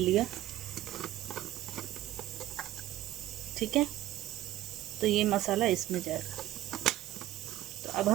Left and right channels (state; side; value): quieter; left; 14.4 dB